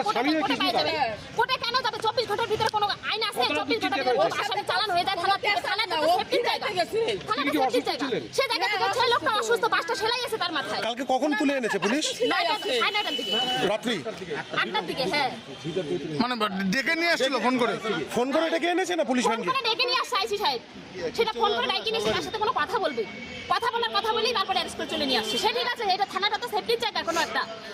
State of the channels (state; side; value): identical; both; correlation 1.00